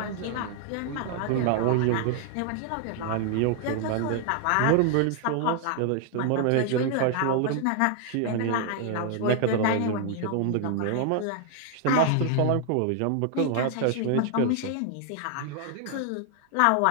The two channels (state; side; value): different; both; correlation 0.00